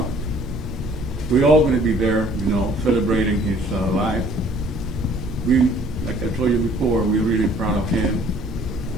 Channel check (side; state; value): both; normal; correlation 0.56